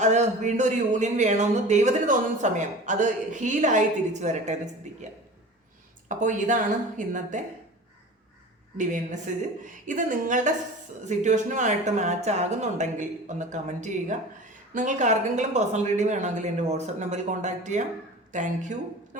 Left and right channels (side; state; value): both; normal; correlation 0.37